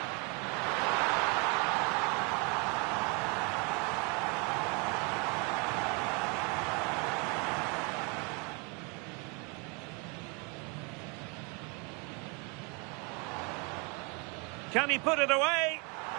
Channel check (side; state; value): left; quieter; 29.8 dB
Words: Can he put it away?